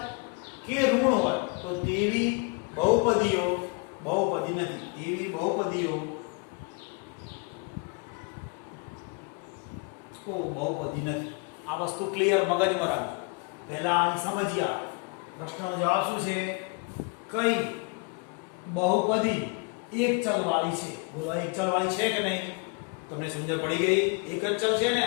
કે ઋણ હોય તો તેવી બહુપદીઓ બહુપદી નથી. તેવી બહુપદીઓ બહુપદી નથી. આ વસ્તુ ક્લિયર મગજમાં રાખજો. પહેલા આને સમજીએ. પ્રશ્નનો જવાબ શું છે? કઈ બહુપદી એક ચલ વાળી છે? બોલો એક ચલ વાળી છે કે નહીં? તમને સમજણ પડી ગઈ? એક જ ચલ છે ને?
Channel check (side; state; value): right; quieter; 31.1 dB